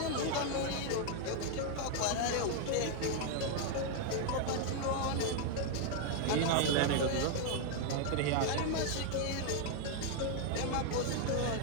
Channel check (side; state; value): both; different; correlation 0.00